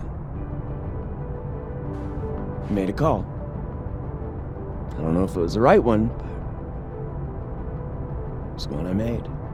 I made a call. I don't know if it was the right one, but it was one I made.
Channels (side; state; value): both; identical; correlation 1.00